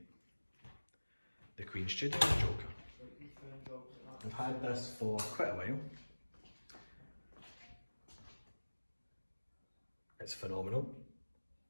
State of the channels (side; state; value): both; inverted; correlation -1.00